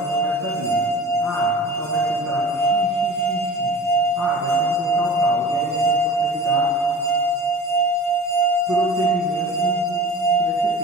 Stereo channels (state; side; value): normal; both; correlation 0.39